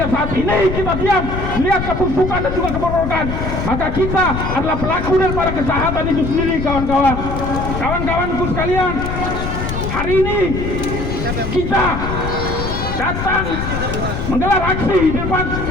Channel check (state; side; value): noise; left; rumble, 4 dB below the sound